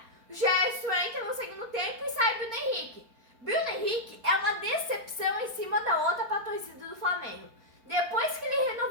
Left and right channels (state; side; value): late; left; 4.4 ms